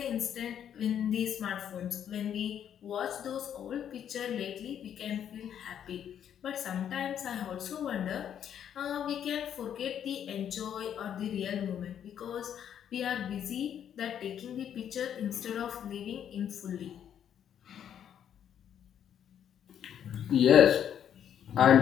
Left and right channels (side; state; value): right; quieter; 9.3 dB